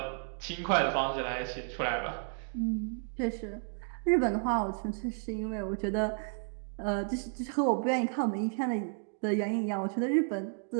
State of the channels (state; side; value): silent; left; 56 dB below the other